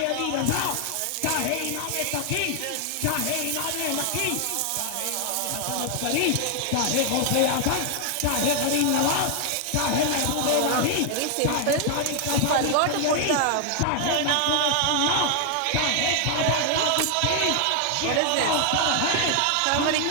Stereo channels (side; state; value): both; different; correlation 0.00